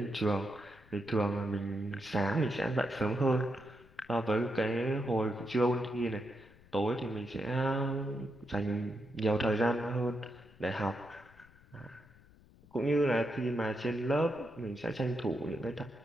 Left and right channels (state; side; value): noise; left; rumble, 25 dB below the sound